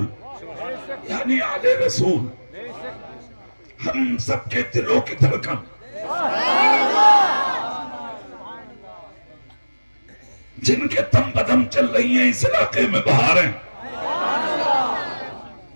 یعنی آل رسول، ہم سب کے دلوں کی دھڑکن، جن کے دم بدم چل رہی ہیں اس علاقے میں بہاریں،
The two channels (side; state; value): both; inverted; correlation -1.00